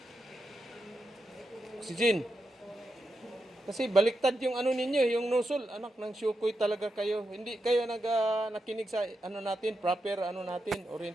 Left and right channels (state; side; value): normal; both; correlation 0.87